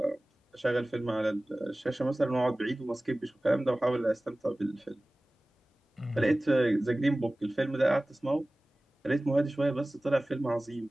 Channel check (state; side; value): normal; both; correlation 0.98